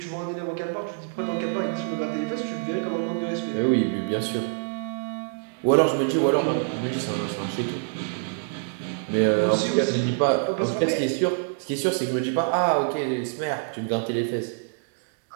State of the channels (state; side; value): silent; left; digital silence